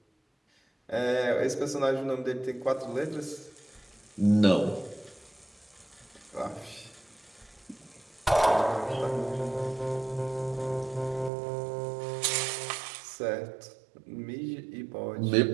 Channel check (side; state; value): left; drops out; at 11.3 s